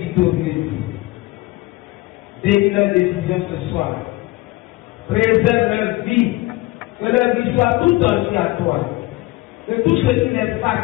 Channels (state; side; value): quieter; right; 20.1 dB